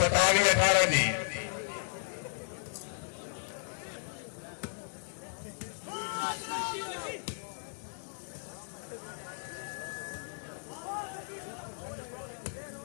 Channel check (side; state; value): right; silent; digital silence